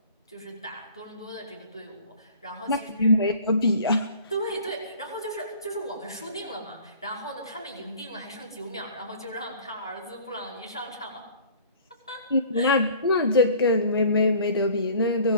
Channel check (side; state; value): both; inverted; correlation -0.48